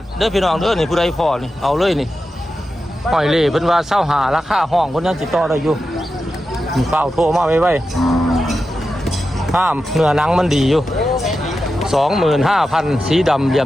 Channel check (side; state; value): both; normal; correlation 0.91